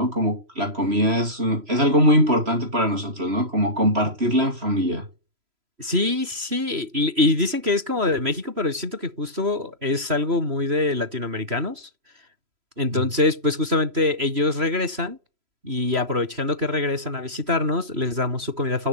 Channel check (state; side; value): late; left; 3.0 ms